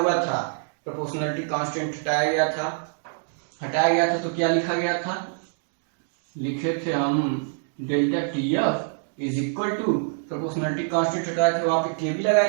था, प्रोपोर्शनलिटी कांस्टेंट हटाया गया था तो क्या लिखा गया था? लिखे थे हम delta TF is equal to proportionality constant हटाया थे, वहां पे के भी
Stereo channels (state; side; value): silent; left; digital silence